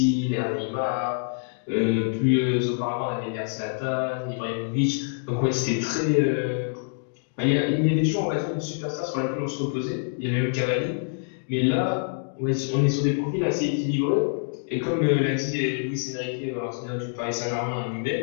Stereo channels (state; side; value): silent; right; digital silence